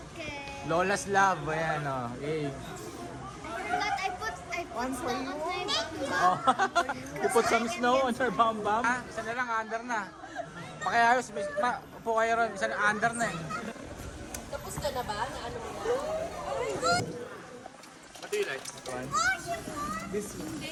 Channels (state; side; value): identical; both; correlation 1.00